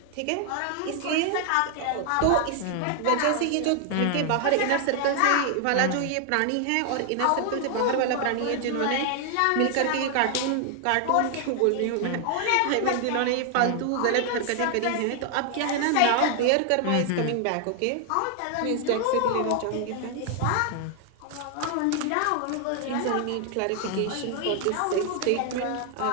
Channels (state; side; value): different; both; correlation 0.00